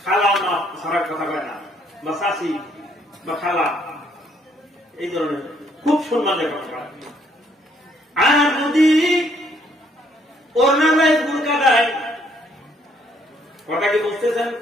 খালা মা সারা কথা কয় না, বা শাশি বা খালা, এই ধরনের খুব সম্মানের কথা কয়। আর যদি ওড়না নাই বুরকা নাই, কথা কি বুঝতেছেন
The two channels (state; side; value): normal; both; correlation 0.67